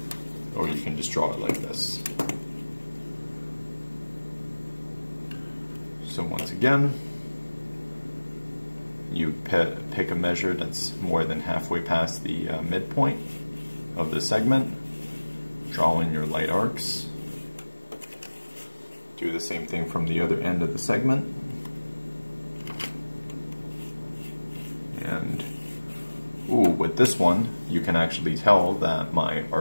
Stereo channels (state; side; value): inverted; both; correlation -1.00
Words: or you can just draw it like this. So once again, you pick a measure that's more than halfway past the midpoint of the segment, draw in your light arcs. Do the same thing from the other end of the segment. And with this one, you can actually tell that my